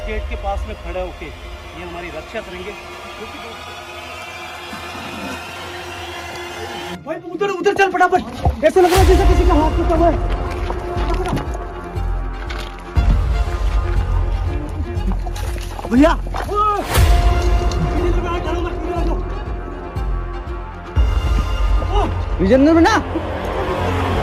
गेट के पास में खड़े होके ये हमारी रक्षा करेंगे। भाई उधर उधर चल फटाफट, ऐसा लग रहा है जैसे किसी का हाथ टूटा हुआ है। भैया विजेंद्र बना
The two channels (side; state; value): both; identical; correlation 1.00